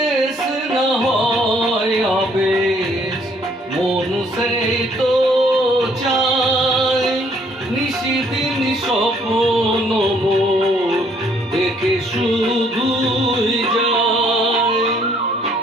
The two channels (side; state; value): both; normal; correlation 0.64